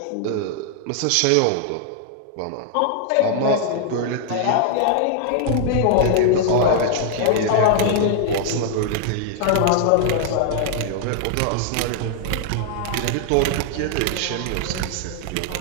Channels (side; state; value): both; different; correlation 0.00